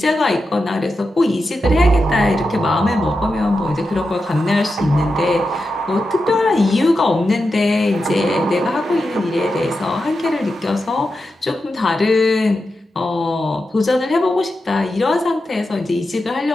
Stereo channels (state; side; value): normal; both; correlation 0.89